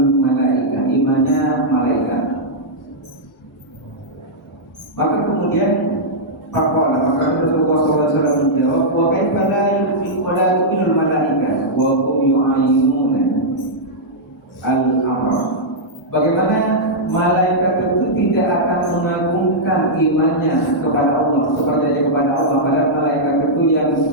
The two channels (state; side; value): normal; both; correlation -0.08